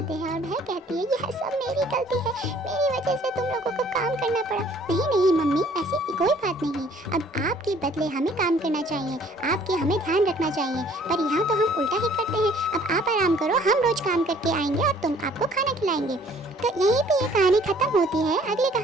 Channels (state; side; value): normal; both; correlation 0.57